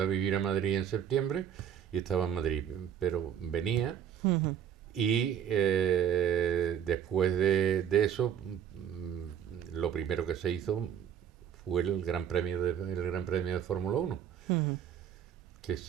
a vivir a Madrid en septiembre y estaba en Madrid, pero venía y después de eso, lo primero que se hizo fue el Gran Premio de Fórmula 1. Que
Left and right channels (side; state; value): left; quieter; 9.2 dB